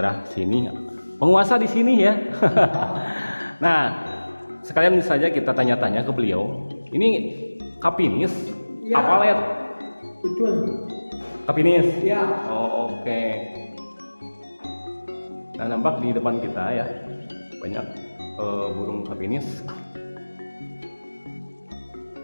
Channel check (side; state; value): both; inverted; correlation -1.00